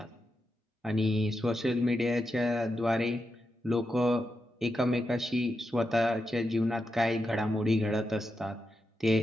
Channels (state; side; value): normal; both; correlation 0.87